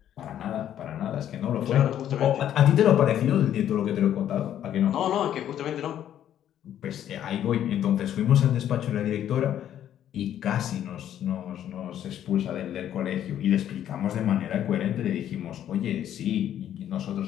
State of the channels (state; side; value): quieter; right; 10.8 dB